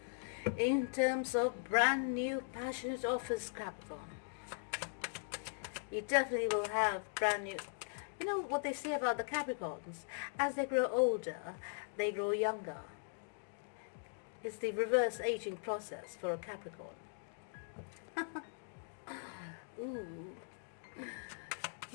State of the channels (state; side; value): silent; right; digital silence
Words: in terms of brand new passionate offers, Capricorn. You definitely will have brand new. You know what they say about the Capricorns? As they grow older, they grow younger. It's the reverse aging process for a Capricorn. Ooh.